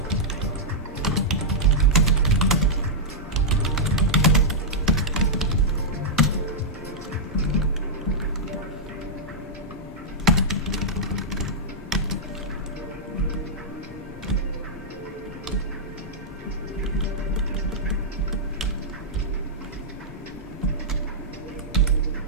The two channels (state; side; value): normal; both; correlation -0.07